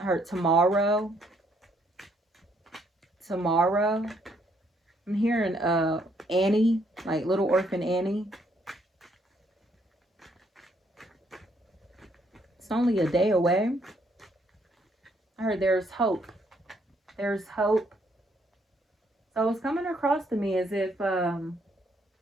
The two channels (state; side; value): normal; both; correlation 0.71